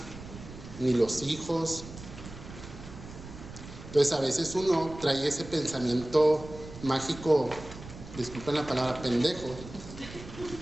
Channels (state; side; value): noise; right; rumble, 14 dB below the sound